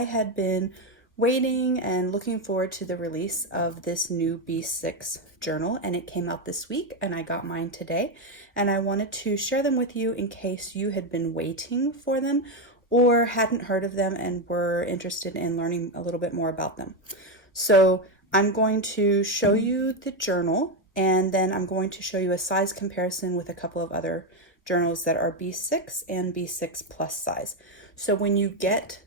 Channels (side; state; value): both; normal; correlation 0.09